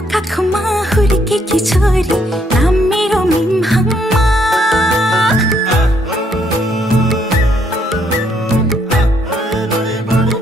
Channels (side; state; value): both; normal; correlation 0.70